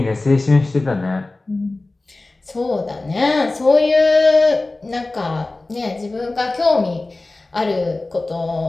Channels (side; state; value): right; quieter; 3.1 dB